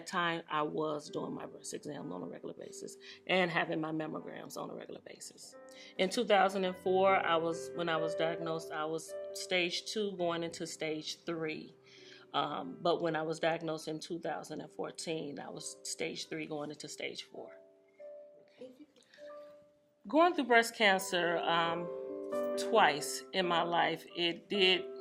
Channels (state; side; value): identical; both; correlation 1.00